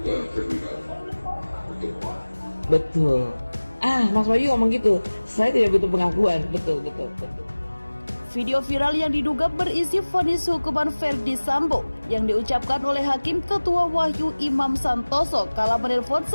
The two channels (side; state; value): both; inverted; correlation -1.00